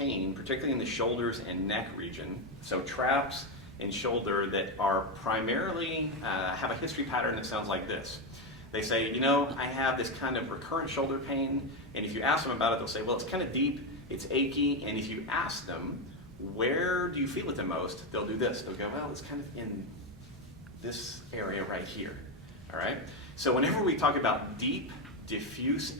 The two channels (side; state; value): both; normal; correlation 0.09